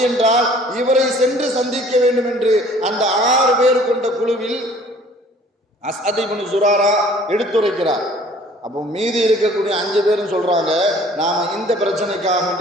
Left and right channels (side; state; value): both; normal; correlation 0.53